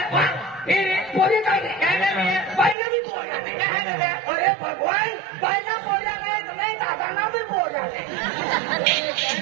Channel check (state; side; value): drops out; left; at 2.8 s